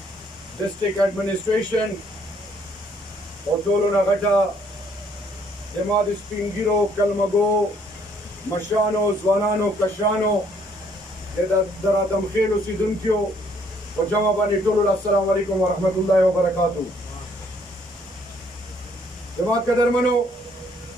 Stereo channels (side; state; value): both; normal; correlation 0.65